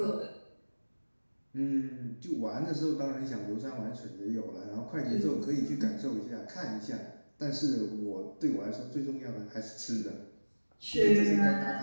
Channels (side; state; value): both; inverted; correlation -1.00